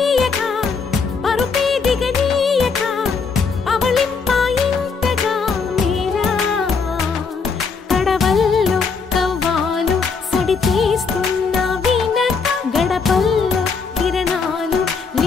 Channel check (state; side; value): quieter; right; 5.2 dB